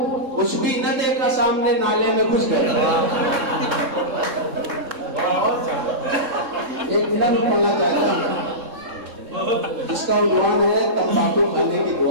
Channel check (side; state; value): left; late; 3.7 ms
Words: कुछ भी न देखा सामने नाले में घुस गए। एक मिनट पढ़ना चाहता हूँ, इसका उन्वान है तंबाकू खाने की